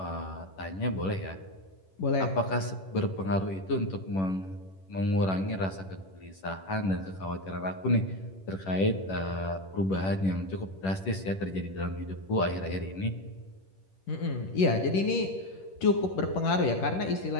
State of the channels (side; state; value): right; late; 11 ms